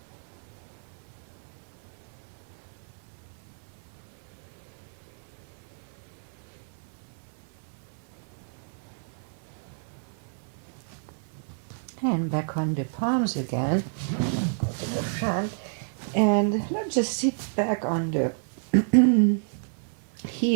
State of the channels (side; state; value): left; silent; 56 dB below the other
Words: And back on the palms again. Go to the front. And let's just sit back on the